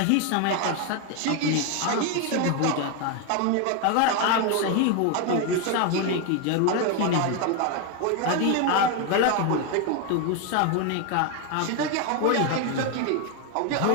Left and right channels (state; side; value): different; both; correlation 0.01